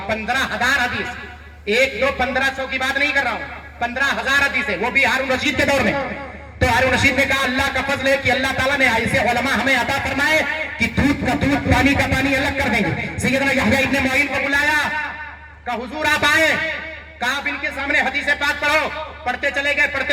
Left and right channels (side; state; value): both; identical; correlation 1.00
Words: 15,000 حدیث، 1 2 1500 کی بات نہیں کر رہا ہوں، 15,000 حدیثیں، وہ بھی ہارون رشید کے دور میں۔ تو ہارون رشید نے کہا اللہ کا فضل ہے کہ اللہ تعالیٰ نے ایسے علماء ہمیں عطا فرمائے کہ دودھ کا دودھ پانی کا پانی الگ کر دیں گے۔ سیدنا یحییٰ ابن معین کو بلایا، کہا حضور آپ آئے، کہا آپ ان کے سامنے حدیث پاک پڑھو۔ پڑھتے چلے